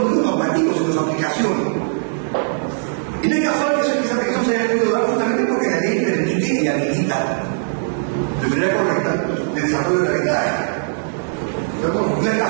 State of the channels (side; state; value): left; silent; 66 dB below the other